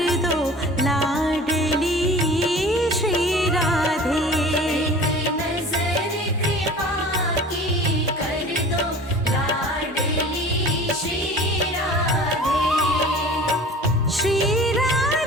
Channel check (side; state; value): both; normal; correlation 0.42